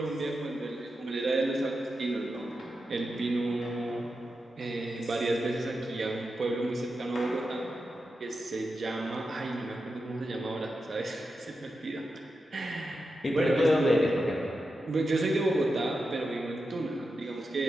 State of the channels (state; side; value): normal; both; correlation 0.89